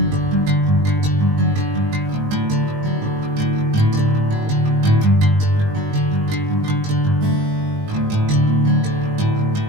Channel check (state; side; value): late; left; 19 ms